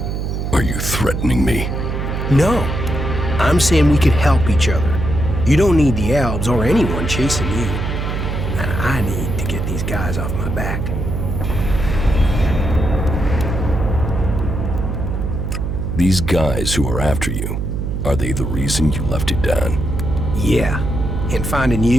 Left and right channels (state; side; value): noise; right; hum, 2 dB below the sound